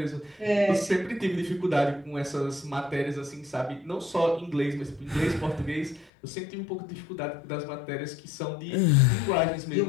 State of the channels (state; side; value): drops out; right; at 6.1 s